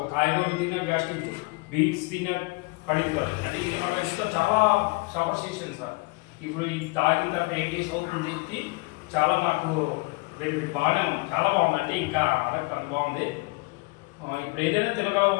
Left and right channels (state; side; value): quieter; right; 26.7 dB